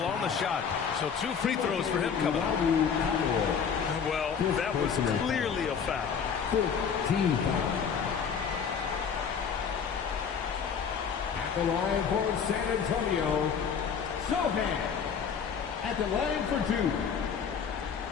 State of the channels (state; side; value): quieter; right; 6.8 dB